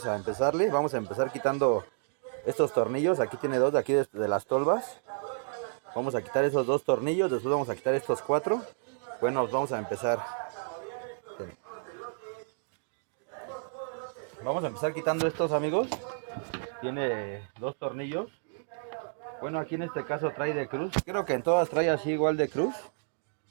a empezar quitando estos tornillos. Aquí tiene dos de aquí de las tolvas. Vamos a quitar esos dos tornillos, después vamos a quitar estos cuatro. Bueno, vamos a empezar. Vamos a empezar quitando estos, amigos. Tiene dos tornillos. Bueno, aquí en este caso trae de cruz. Creo que en todas trae así igual de cruz.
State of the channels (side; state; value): left; silent; digital silence